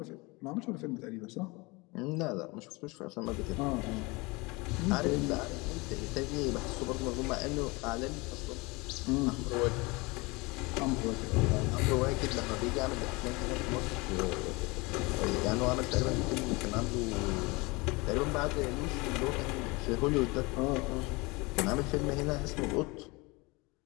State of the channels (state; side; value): quieter; right; 25.2 dB